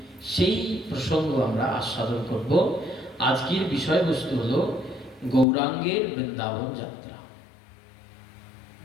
সেই প্রসঙ্গ আমরা আস্বাদন করব। আজকের বিষয়বস্তু হলো গৌরাঙ্গের বৃন্দাবন যাত্রা।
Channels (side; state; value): right; drops out; at 5.5 s